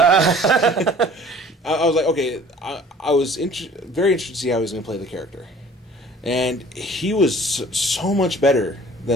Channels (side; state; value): both; normal; correlation 0.49